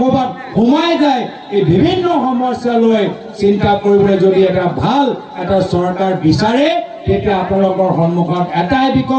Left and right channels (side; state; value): both; identical; correlation 1.00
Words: সোমাই যায় এই বিভিন্ন সমস্যা লৈ চিন্তা কৰিবলৈ যদি এটা ভাল এটা চৰকাৰ বিচাৰে তেতিয়া আপোনালোকৰ সন্মুখত এটাই